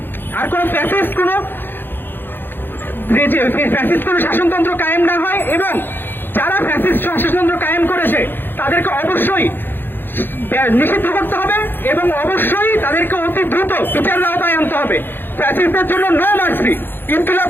কোনো শাসনতন্ত্র কায়েম না হয়, এবং যারা ফ্যাসিস্ট শাসনতন্ত্র কায়েম করেছে তাদেরকে অবশ্যই নিষিদ্ধ করতে হবে এবং অবশ্যই তাদেরকে অতি দ্রুত বিচারের আওতায় আনতে হবে। ফ্যাসিস্টদের জন্য নো মার্সি। ইনকিলাব।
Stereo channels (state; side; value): late; right; 0.099 ms